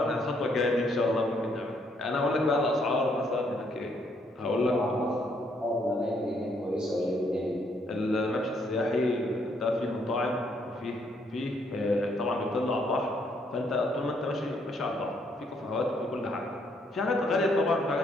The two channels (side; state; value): both; normal; correlation 0.71